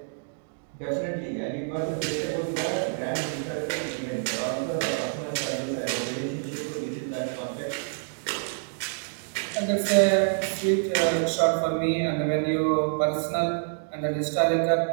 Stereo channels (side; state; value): left; silent; digital silence